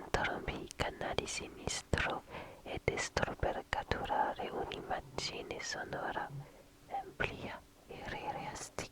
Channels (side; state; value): both; identical; correlation 1.00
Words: di sinistro e destro per catturare un'immagine sonora ampia e